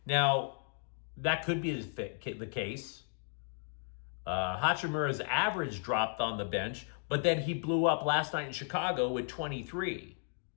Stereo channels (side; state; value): right; silent; digital silence